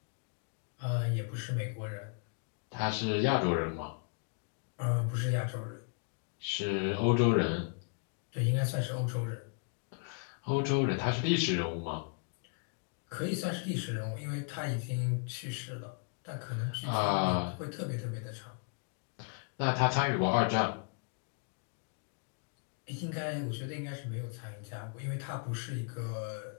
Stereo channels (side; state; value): right; quieter; 39.8 dB